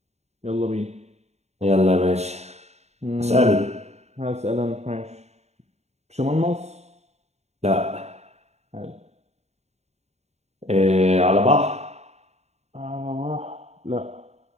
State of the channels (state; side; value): late; left; 0.32 ms